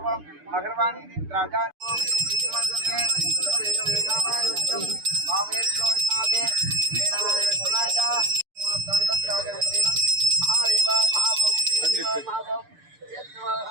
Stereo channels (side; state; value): left; late; 6.8 ms